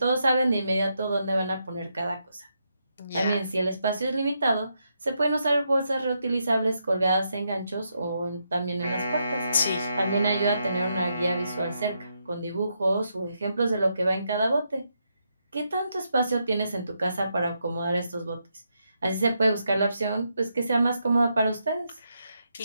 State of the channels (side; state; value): both; inverted; correlation -0.81